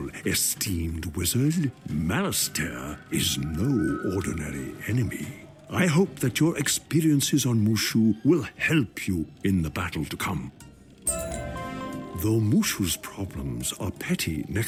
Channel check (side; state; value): both; identical; correlation 1.00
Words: esteemed wizard. Malastair is no ordinary enemy. I hope that your experiences on Mooshu will help you in the battle to come. Though Mooshu's problems are petty